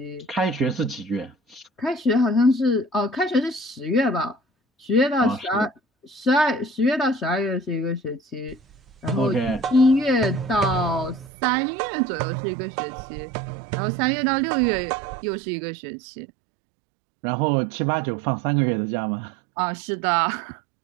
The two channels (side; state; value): left; drops out; at 11.3 s